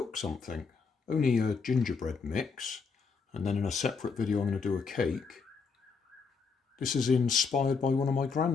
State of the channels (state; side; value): quieter; right; 5.1 dB